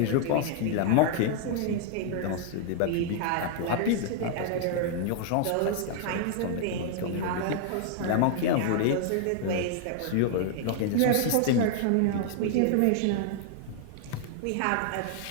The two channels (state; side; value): different; both; correlation 0.00